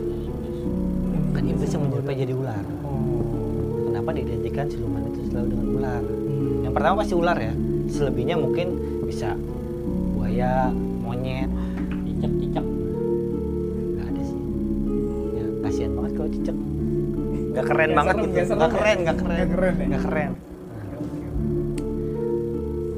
iblis. Kan iblis yang menyerupai jadi ular. Kenapa diidentikan siluman itu selalu dengan ular? Yang pertama pasti ular ya. Selebihnya mungkin bisa buaya, monyet. Cicak. Nggak ada sih. Ya kasihan banget kalau cicak. Nggak keren Nggak banget serem, gitu. nggak serem Nggak ya? keren. Nggak keren ya? Nggak keren.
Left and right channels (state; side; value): identical; both; correlation 1.00